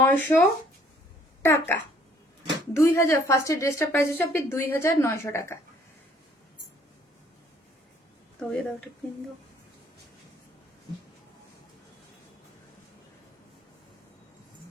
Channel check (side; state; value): both; normal; correlation 0.61